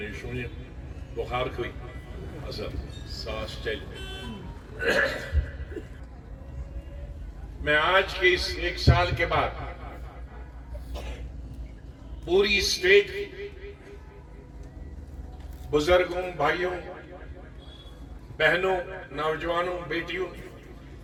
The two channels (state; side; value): identical; both; correlation 1.00